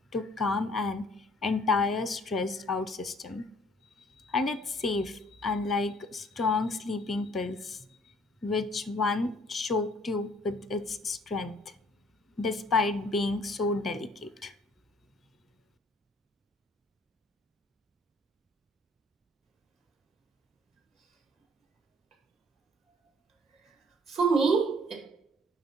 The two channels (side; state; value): both; normal; correlation 0.58